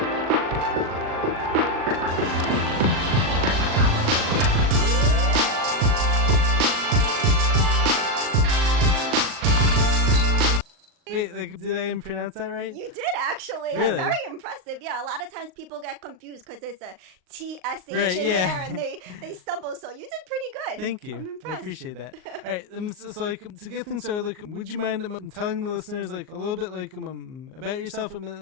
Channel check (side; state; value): left; late; 38 ms